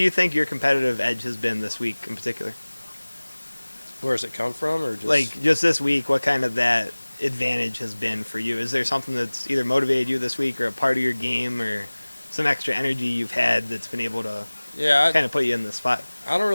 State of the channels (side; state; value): both; inverted; correlation -1.00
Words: think your competitive edge has been this week in particular? Where does it come from, or just Just this week, what that advantage has been for you? Is there something that's either motivated you this week or a part of your game or some extra energy you've had that's been able to yeah, put you in this spot? I don't